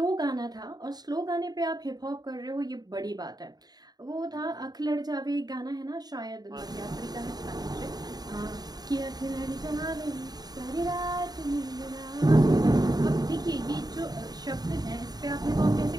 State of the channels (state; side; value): late; left; 0.19 ms